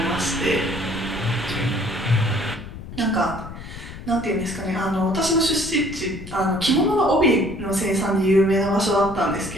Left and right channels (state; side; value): noise; left; rumble, 12 dB below the sound